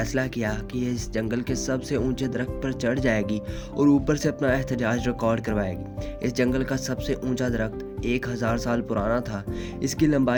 किया कि ये इस जंगल के सबसे ऊंचे दरख्त पर चढ़ जाएगी और ऊपर से अपना एहतजाज रिकॉर्ड करवाएगी। इस जंगल का सबसे ऊंचा दरख्त 1000 साल पुराना था। इसकी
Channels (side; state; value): both; identical; correlation 1.00